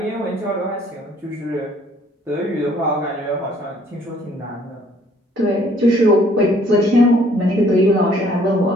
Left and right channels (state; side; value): normal; both; correlation 0.61